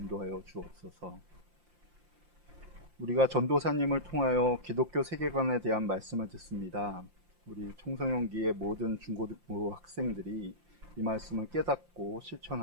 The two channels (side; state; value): left; late; 5.7 ms